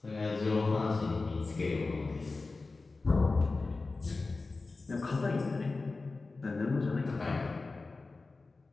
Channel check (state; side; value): quieter; right; 3.7 dB